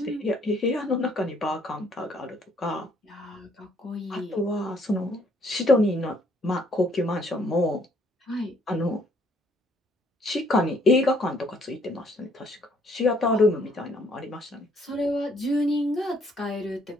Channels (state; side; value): normal; both; correlation 0.65